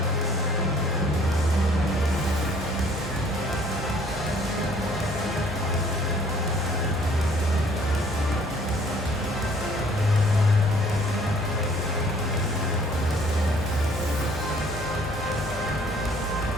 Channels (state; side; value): normal; both; correlation 0.58